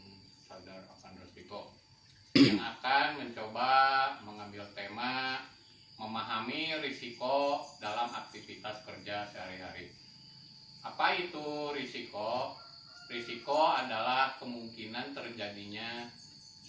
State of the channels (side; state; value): both; identical; correlation 1.00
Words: sadar akan risiko, yang akan mencoba mengambil tema memahami risiko dalam aktivitas kerja sehari-hari. Apa itu risiko? Risiko adalah kemungkinan terjadinya